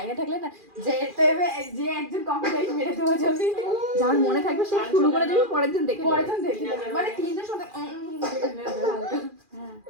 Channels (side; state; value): left; late; 2.4 ms